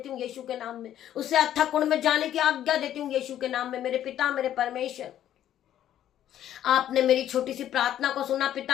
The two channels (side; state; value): right; quieter; 11.4 dB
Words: हूँ यीशु के नाम में, उसे अथक कुंड में जाने की आज्ञा देती हूँ यीशु के नाम में। मेरे पिता मेरे परमेश्वर, आपने मेरी छोटी सी प्रार्थना को सुना